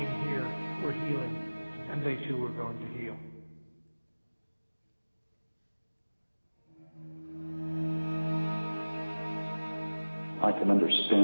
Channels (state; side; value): inverted; both; correlation -1.00